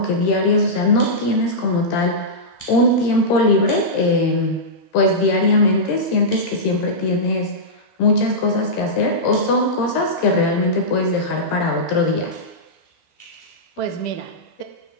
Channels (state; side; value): late; right; 13 ms